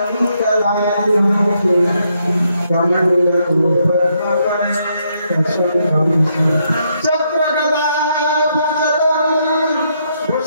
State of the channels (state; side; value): inverted; both; correlation -0.76